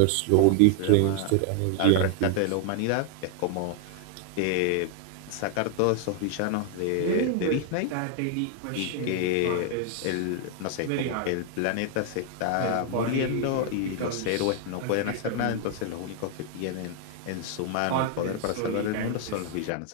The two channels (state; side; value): different; both; correlation 0.00